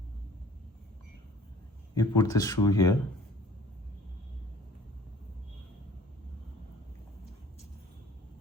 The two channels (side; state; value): both; normal; correlation 0.51